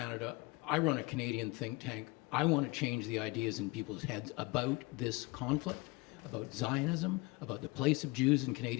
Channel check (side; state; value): right; quieter; 24.1 dB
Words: I run a Canadian think tank. I want to change the ideas in people's heads about this conflict, about Zionism, about the place of Jews in